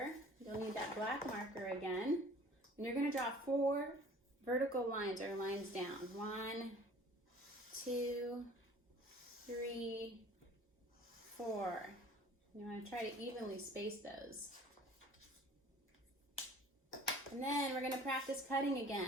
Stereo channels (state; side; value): normal; both; correlation 0.49